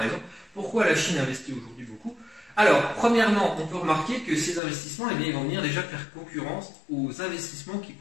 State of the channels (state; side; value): drops out; right; at 4.6 s